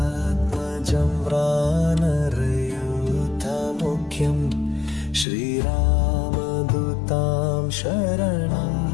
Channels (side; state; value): right; drops out; at 5.2 s